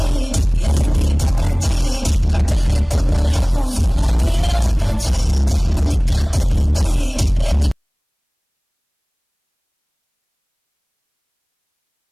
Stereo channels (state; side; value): identical; both; correlation 1.00